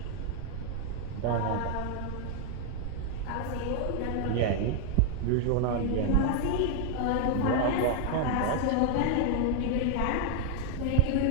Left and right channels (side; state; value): both; different; correlation 0.00